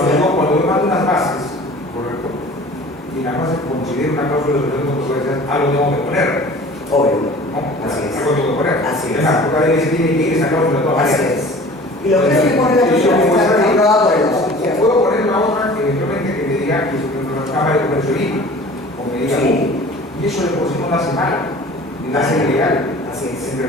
yo mando unas bases, correcto, y las bases considero una cláusula de controversia, algo tengo que poner. Obvio. ¿No? Así es. Algo tengo que poner. Así es. Además, porque ahí se tiene que ir esa cláusula de todas Así maneras. es. Y lo que hay que poner la persona está regulada por el O puedo poner la otra eventualmente que me diga que es la Cámara de Comercio de Lima, o me diga, Sí. y eso de por sí no lo hace mal, ni lo hace ilegal. Así es. En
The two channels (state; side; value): normal; both; correlation 0.44